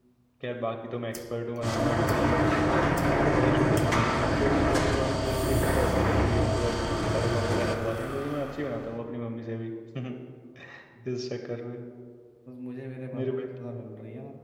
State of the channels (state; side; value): identical; both; correlation 1.00